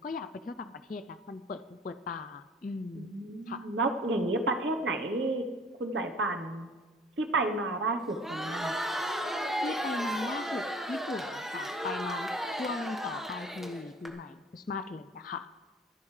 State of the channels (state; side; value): normal; both; correlation 0.49